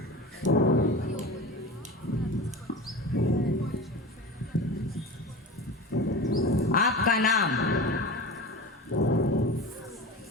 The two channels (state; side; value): normal; both; correlation 0.31